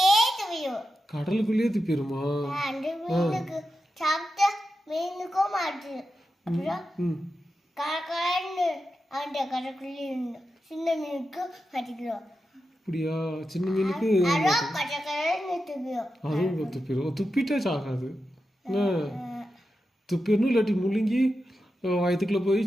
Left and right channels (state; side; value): normal; both; correlation 0.90